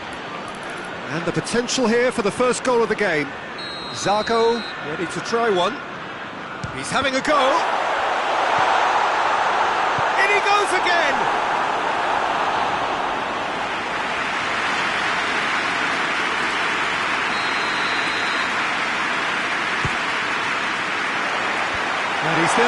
And the potential here for the first goal of the game. Zago ready to try one. He's having a go. In he goes again. And he's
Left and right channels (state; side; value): identical; both; correlation 1.00